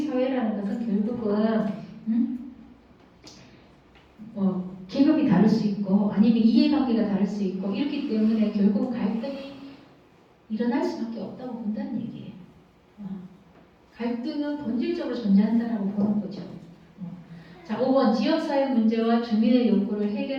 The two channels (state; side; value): identical; both; correlation 1.00